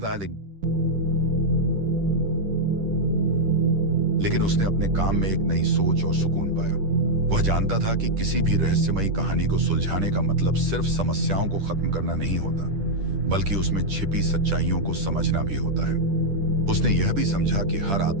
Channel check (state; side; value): late; left; 10 ms